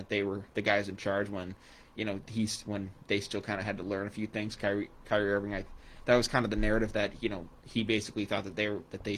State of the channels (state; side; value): identical; both; correlation 1.00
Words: they were the guys in charge when, when they still kind of had to learn a few things. Kyrie Irving, that was kind of the narrative that, he basically thought that they